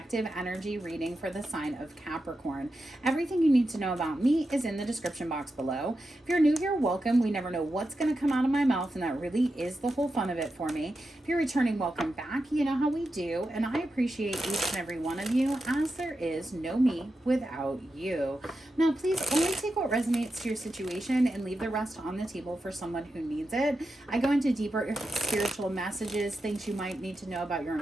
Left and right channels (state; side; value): normal; both; correlation 0.89